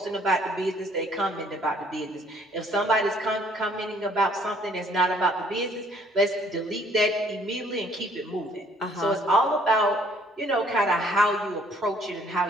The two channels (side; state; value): both; normal; correlation 0.62